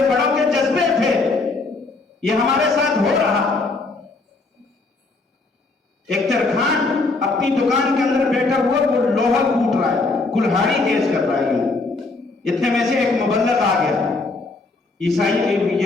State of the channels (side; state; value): right; quieter; 3.5 dB